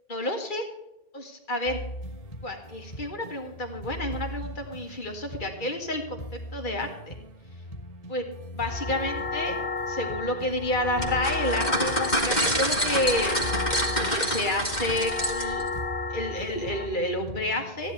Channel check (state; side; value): late; right; 2.1 ms